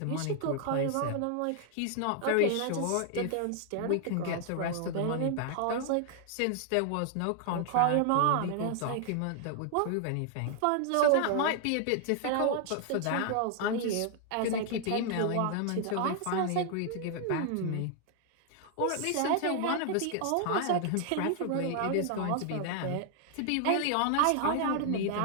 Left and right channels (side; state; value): both; different; correlation 0.00